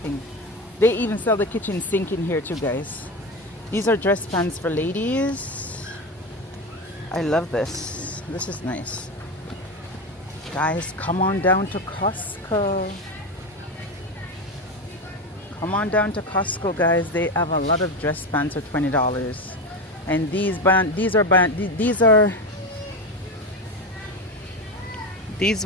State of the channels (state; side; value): normal; both; correlation 0.19